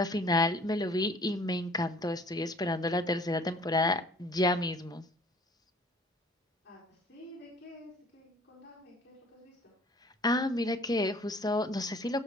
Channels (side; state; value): both; normal; correlation 0.52